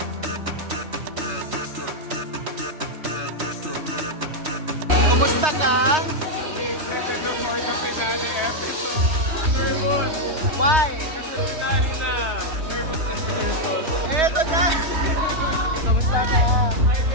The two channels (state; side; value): late; left; 3.3 ms